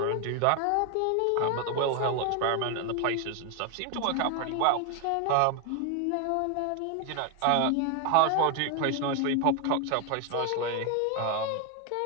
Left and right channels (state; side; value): different; both; correlation 0.01